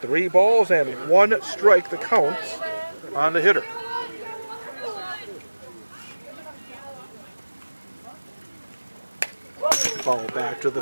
3 balls and 1 strike the count on the hitter. Ball back to the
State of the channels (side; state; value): both; inverted; correlation -1.00